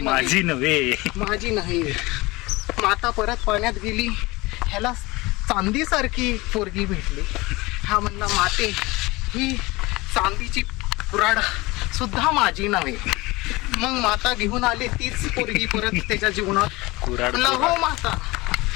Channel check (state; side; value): quieter; right; 22.0 dB